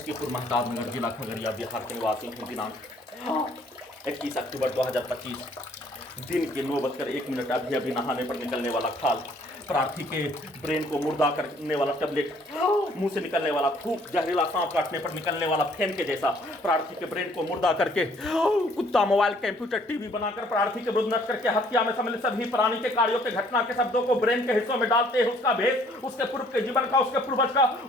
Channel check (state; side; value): normal; both; correlation 0.61